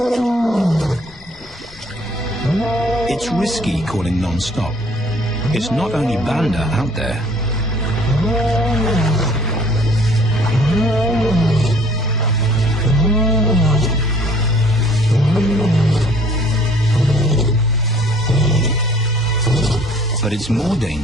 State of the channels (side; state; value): both; normal; correlation 0.56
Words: It's risky calling non-stop. It's not only Banda out there. But it's more